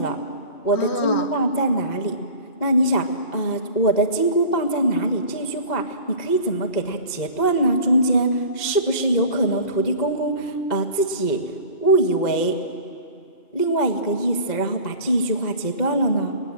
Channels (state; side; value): late; right; 2.1 ms